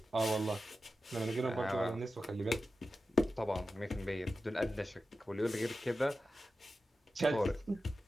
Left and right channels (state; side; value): normal; both; correlation 0.92